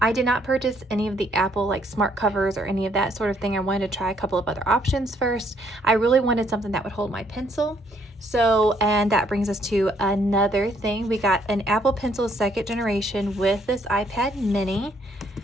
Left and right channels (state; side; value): normal; both; correlation 0.68